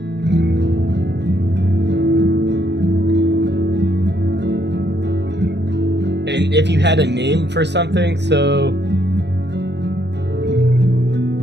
And if you had a name for something, so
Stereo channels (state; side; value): late; left; 0.50 ms